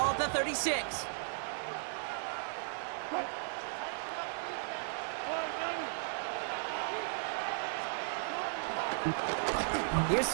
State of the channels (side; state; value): left; silent; digital silence